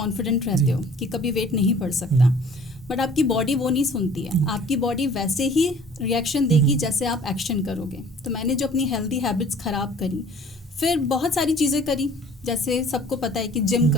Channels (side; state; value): both; normal; correlation 0.51